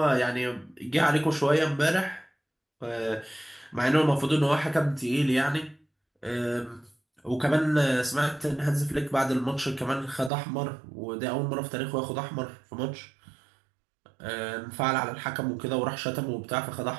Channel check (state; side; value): drops out; left; at 10.3 s